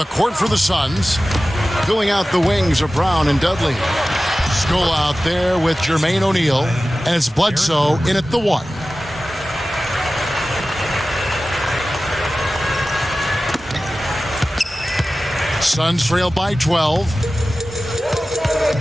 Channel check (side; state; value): both; normal; correlation 0.96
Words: court for the Suns. Filling out the wings of Brown and Dudley. Skull out there with Jermaine O'Neal. And it's Bledsoe in at the 1. Suns trail by 12.